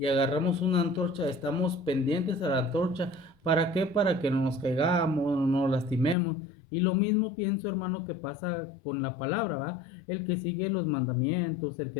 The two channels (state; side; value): drops out; right; at 6.2 s